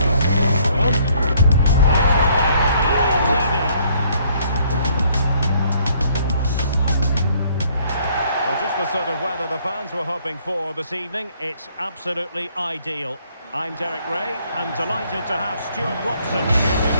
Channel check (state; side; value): inverted; both; correlation -0.64